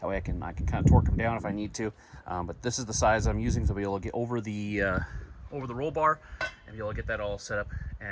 That way I can kind of torque them down if I need to. But this is the size I'm using to be able to get over the roll bar and be able to get that all set up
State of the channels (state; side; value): identical; both; correlation 1.00